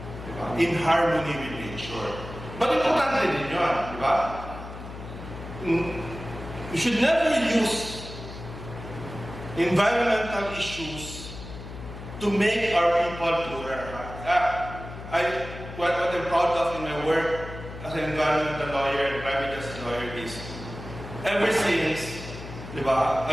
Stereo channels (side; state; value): left; noise; hum, 12 dB below the sound